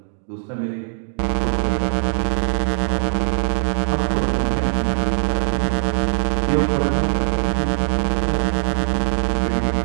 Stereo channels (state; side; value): silent; left; digital silence